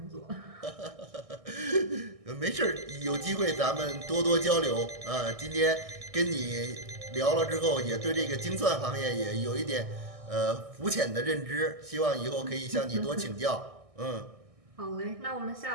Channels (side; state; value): left; late; 1.6 ms